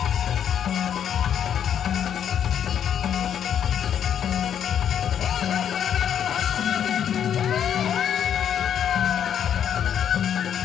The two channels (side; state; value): right; quieter; 9.0 dB